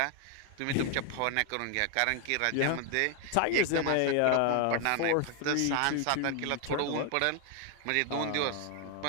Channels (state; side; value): different; both; correlation 0.01